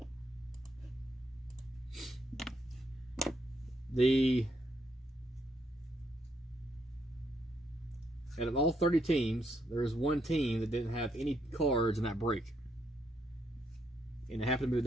Out of all 30 teams, there is one team that didn't have any cards in that break. And it happened to be the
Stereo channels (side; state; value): both; normal; correlation 0.75